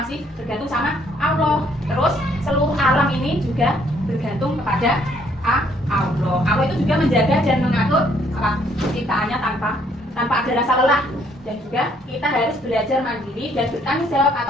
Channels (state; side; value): normal; both; correlation 0.66